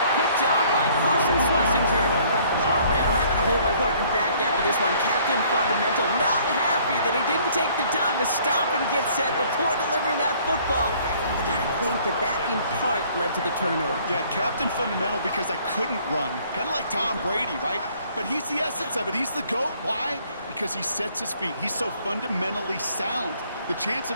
Picked off by Carson Schlesinger. Oh, man, I'm having to hold my partner back after this one. Captain Fundamental not happy that he didn't take the time to stop and get set before delivering that football. I think that in part led to the turnover. Yeah, Captain Fundamental because I couldn't run. Kind of like Tom Brady, right? But he's the essence of it. He's the GOAT. Why? Because he sets his feet. He's so fundamentally sound. The chance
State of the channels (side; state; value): both; inverted; correlation -0.59